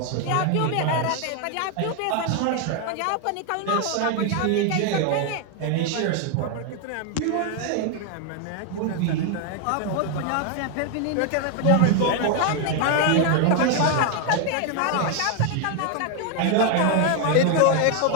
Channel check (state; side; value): different; both; correlation 0.01